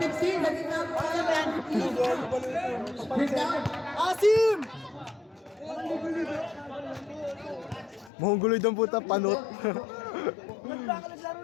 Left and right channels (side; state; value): right; drops out; at 8.1 s